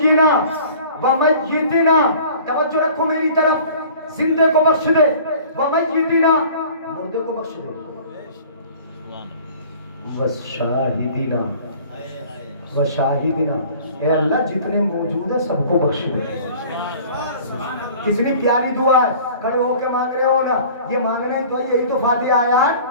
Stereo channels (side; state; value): both; inverted; correlation -0.47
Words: ومیتنا، توجہ رکھو میری طرف، زندے کو بخش دے، ومیتنا، مردے کو بخش دے، وشاہدنا، وشاہدنا، اے اللہ جتنے موجود ہیں سب کو بخش دے. کتنی پیاری دعا ہے، کھڑے ہو کے مانگ رہے ہو نا، یہ مانگنا ہی تو یہی تو فاتحہ آیا ہے.